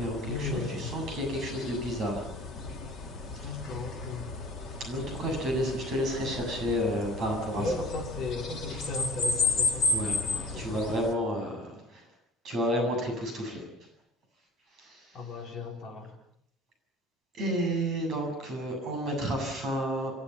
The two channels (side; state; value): both; normal; correlation 0.45